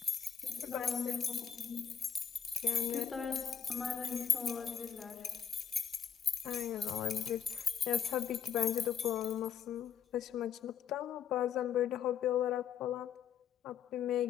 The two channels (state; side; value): quieter; right; 8.0 dB